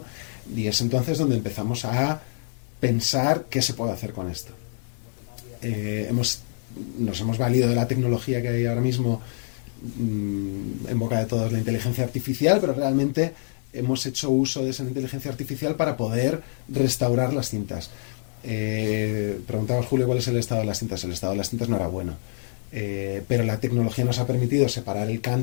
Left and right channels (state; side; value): silent; right; digital silence